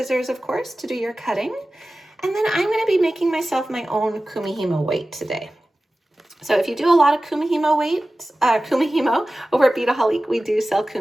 of course, to do your cutting. And then I'm going to be making myself my own Kumihimo weight today. So if you do a lot of Kumihimo weights, Kumihimo over at Beadaholic, we do sell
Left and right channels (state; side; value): normal; both; correlation 0.96